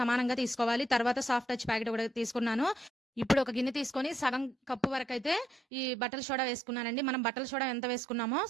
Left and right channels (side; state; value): left; drops out; at 5.6 s